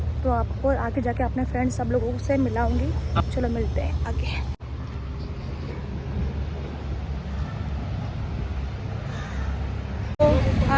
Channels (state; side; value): identical; both; correlation 1.00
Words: तो आपको आगे जाके अपने फ्रेंड्स सब लोगों से मिलाऊंगी। चलो मिलते हैं आगे। तो